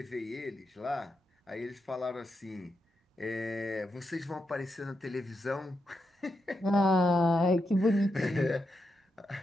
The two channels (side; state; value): both; normal; correlation 0.85